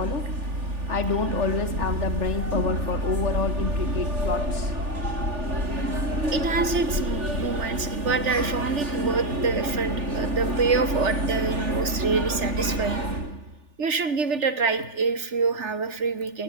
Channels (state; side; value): late; left; 3.4 ms